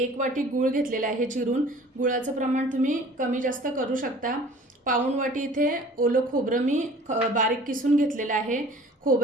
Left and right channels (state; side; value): normal; both; correlation 0.48